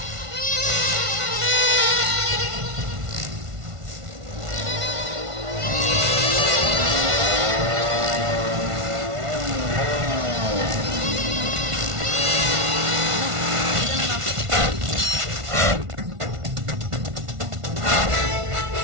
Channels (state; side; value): late; left; 1.5 ms